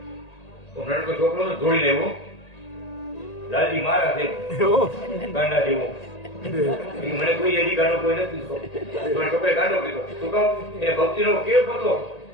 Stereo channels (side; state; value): right; late; 1.8 ms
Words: નડકો છોકરો તો દોડી લેવો, લાલજી મારા છે ગાંડા જેવો. મને કોઈ એની ગાંડો કોઈ નથી. છોકરે ગાંડો કીધો. શું કહું એ ભક્તિ નો કેવ હતો.